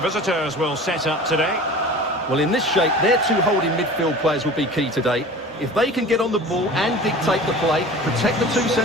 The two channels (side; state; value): both; normal; correlation 0.39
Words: visitors will set up today. Well, in this shape, their two holding midfield players will be key today. If they can get on the ball and dictate the play, protect the two